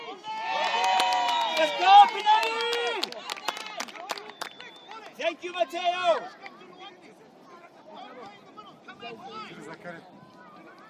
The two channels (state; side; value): identical; both; correlation 1.00